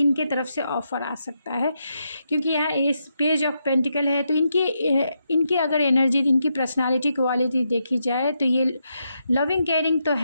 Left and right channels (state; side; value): inverted; both; correlation -0.82